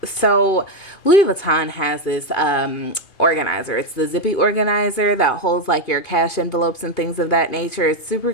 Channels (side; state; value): right; late; 2.6 ms